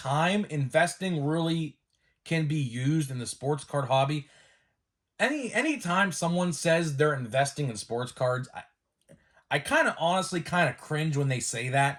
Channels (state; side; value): identical; both; correlation 1.00